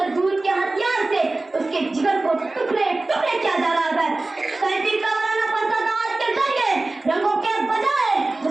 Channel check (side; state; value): left; quieter; 3.1 dB